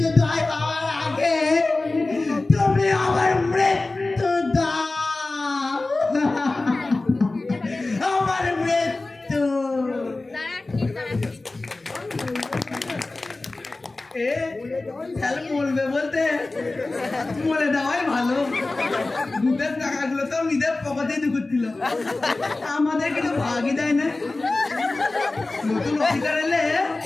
হওয়ার আগে তুমি আমার মৃত্যু দাও, আমার মৃত্যু। বলবে বলতে মরে দেওয়াই ভালো। দুধের টাকাগুলো তো নিজের পকেটেই ঢুকছিল, আমাদের কিন্তু ভাগই দেয় না। নতুন অফিসার এলে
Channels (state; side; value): quieter; right; 3.2 dB